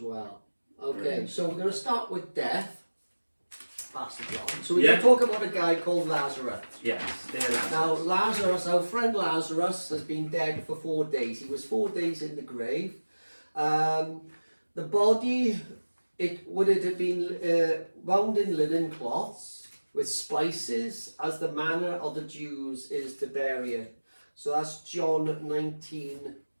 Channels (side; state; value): both; inverted; correlation -1.00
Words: well. Okay, Brilliant. So we're going to start with death. Pastor John. So we're going to talk about a guy called Lazarus. Yes. Now Lazarus, our friend Lazarus, has been dead for 4 days. He was 4 days in the grave. The body, it would have been wound in linen cloths with spices, as the manner of the Jews is to bury it. So that's John 19,